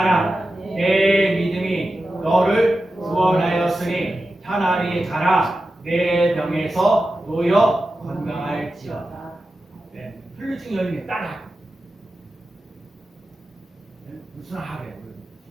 내 믿음이 너를 구원하였으니 차라리 가라 내 병에서 놓여 건강할지어다. 네, 혈류증 여인이 따라 무슨 하래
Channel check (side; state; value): both; normal; correlation 0.92